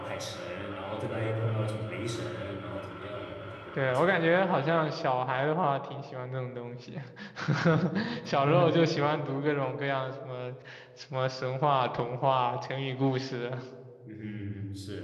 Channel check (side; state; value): both; identical; correlation 1.00